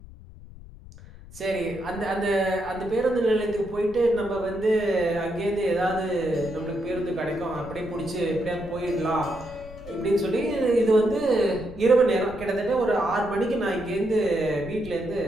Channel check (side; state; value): left; noise; rumble, 17 dB below the sound